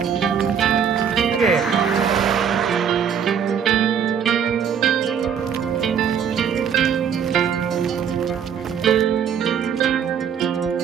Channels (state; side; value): quieter; left; 7.7 dB